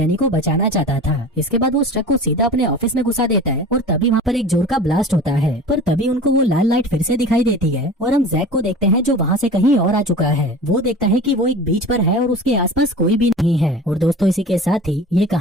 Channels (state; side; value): normal; both; correlation 0.37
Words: को बचाना चाहता था। इसके बाद वो उस ट्रक को सीधा अपने ऑफिस में घुसा देता है और तभी वहाँ पर एक जोर का ब्लास्ट होता है। पर तभी उनको वो लाल लाइट फिर से दिखाई देती है और हम जैक को देखते हैं, जो वहाँ से कहीं और आ चुका है। वो देखता है कि वो एक बीच पर है और उसके आसपास कोई भी नहीं है। और दोस्तों, इसी के साथ ही ये